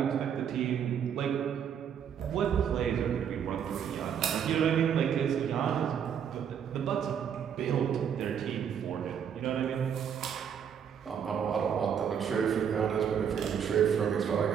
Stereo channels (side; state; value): left; quieter; 8.1 dB